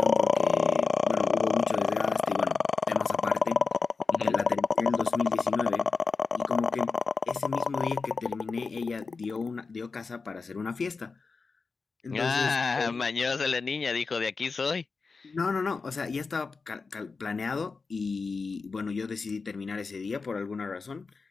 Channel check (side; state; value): right; quieter; 4.5 dB